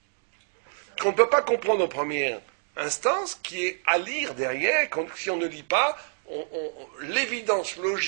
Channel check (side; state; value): left; silent; 60 dB below the other